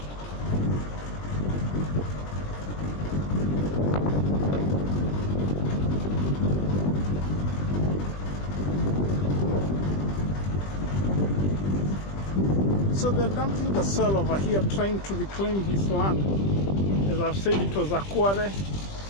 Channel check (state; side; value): late; right; 20 ms